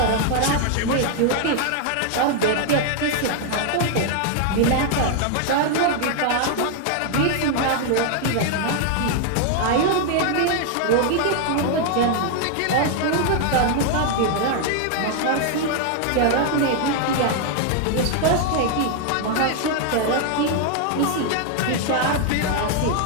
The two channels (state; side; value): different; both; correlation 0.00